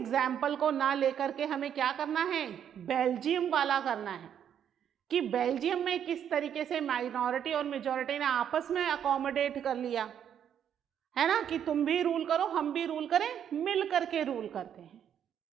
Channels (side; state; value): left; quieter; 9.1 dB